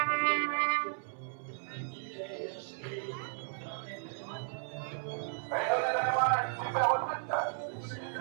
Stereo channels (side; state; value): left; silent; 55 dB below the other